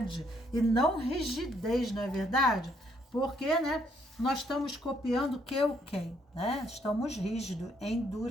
e não rigidez, não é verdade? Porque, né, nós estamos copiando que o quem, né? Estamos rígidos,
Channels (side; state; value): both; normal; correlation 0.70